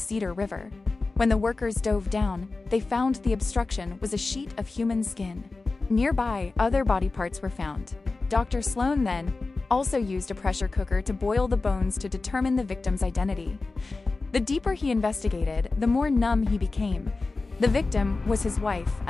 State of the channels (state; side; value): quieter; right; 3.6 dB